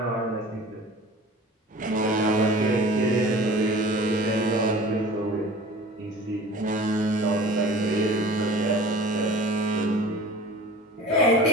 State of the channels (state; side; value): normal; both; correlation 0.42